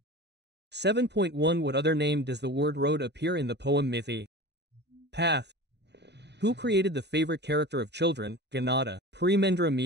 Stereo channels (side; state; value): left; late; 0.50 ms